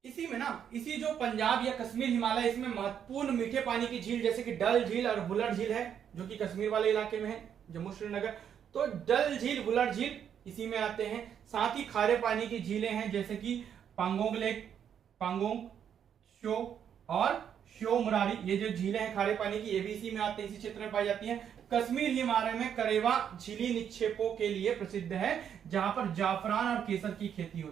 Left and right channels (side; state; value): left; quieter; 8.6 dB